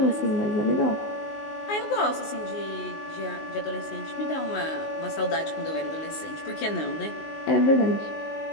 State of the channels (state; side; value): late; right; 19 ms